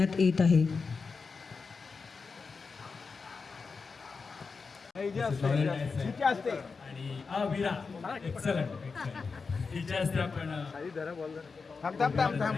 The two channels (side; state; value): right; quieter; 4.8 dB